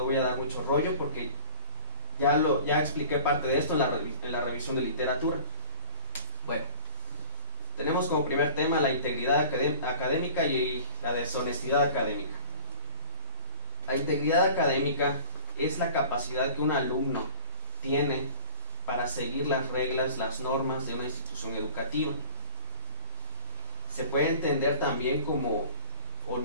voy a dar mucho rollo porque ya expliqué parte de esto en la revisión de literatura. Bueno, tenemos como primer tema la integridad académica y la deshonestidad académica. La integridad académica es la capacidad que un alumno tiene para seguir las reglas, las normas de una institución educativa. Se puede entender también como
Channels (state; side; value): inverted; both; correlation -0.41